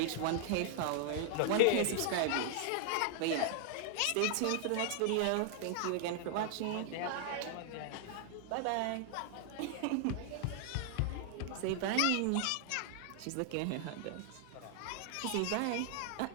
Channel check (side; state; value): both; different; correlation 0.00